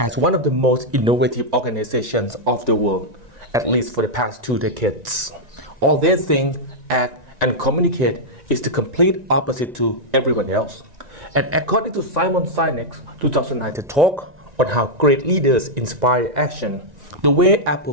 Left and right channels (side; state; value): left; late; 1.9 ms